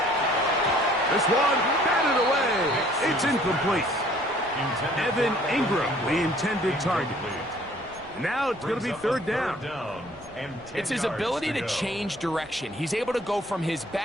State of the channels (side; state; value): right; noise; rumble, 24 dB below the sound